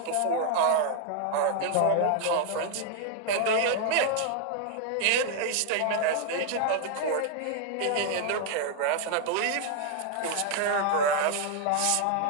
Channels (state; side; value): different; both; correlation 0.00